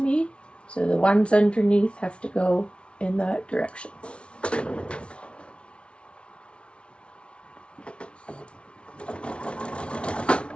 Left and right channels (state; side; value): late; right; 0.059 ms